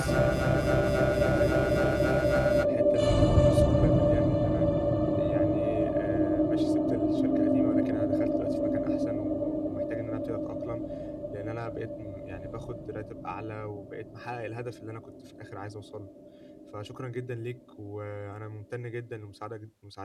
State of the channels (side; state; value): both; identical; correlation 1.00